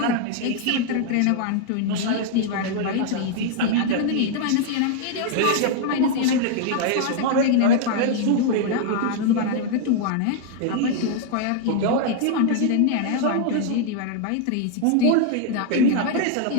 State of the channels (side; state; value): both; different; correlation 0.00